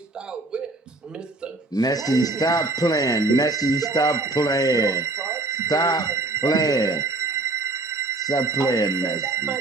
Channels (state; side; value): quieter; left; 3.0 dB